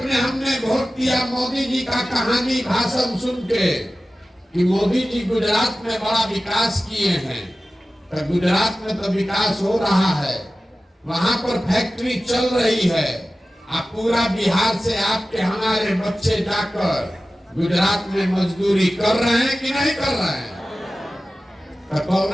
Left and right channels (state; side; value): normal; both; correlation 0.95